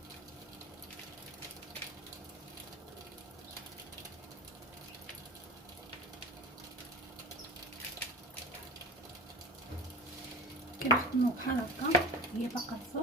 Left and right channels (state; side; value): normal; both; correlation 0.33